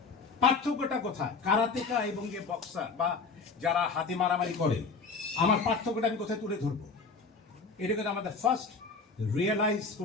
পার্থক্যটা কোথায় কারাতেকা এবং যে বক্সার বা যারা হাতে মারামারি করে, আমার পার্থক্যটা আমি কোথায় তুলে ধরবো? এটাকে আমাদের ফার্স্ট রিয়েলাইজ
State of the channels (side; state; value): right; quieter; 4.5 dB